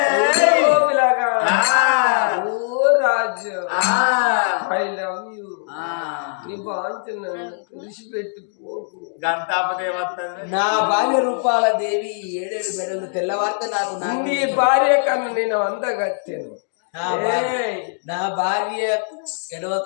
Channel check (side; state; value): right; silent; digital silence